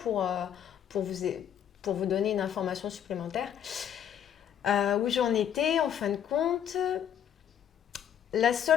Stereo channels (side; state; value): right; quieter; 9.4 dB